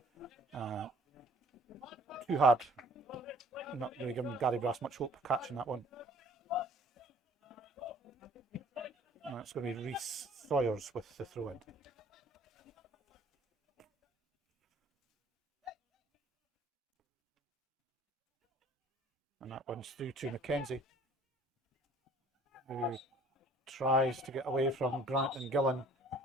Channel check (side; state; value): both; normal; correlation 0.54